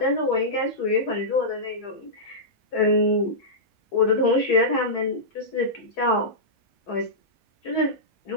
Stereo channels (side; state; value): both; normal; correlation -0.14